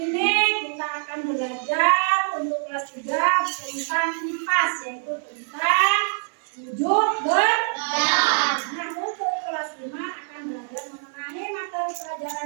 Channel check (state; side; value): silent; left; 59 dB below the other